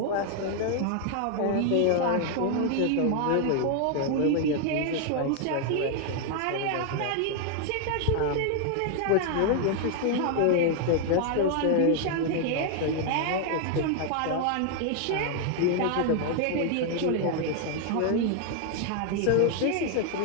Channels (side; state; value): both; different; correlation 0.00